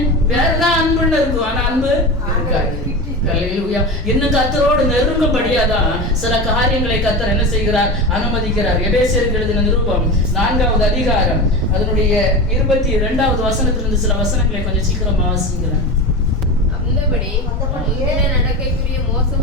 வேறதான் அன்புன்னு இருக்கும், ஆனா அன்பு இருக்காது. ஹல்லேலூயா. இன்னும் கர்த்தரோடு நெருங்கும்படியாதான் சில காரியங்களை கர்த்தர் என்ன செய்கிறார்? அனுமதிக்கிறார். எபேசியருக்கு எழுதின நிருபம் 4வது அதிகாரம் அதனுடைய 22வது வசனத்திலிருந்து சில வசனங்களை கொஞ்சம் சீக்கிரமா வாசிக்கிறேன். அந்தபடி நடக்கைக்குரிய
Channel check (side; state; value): both; normal; correlation 0.26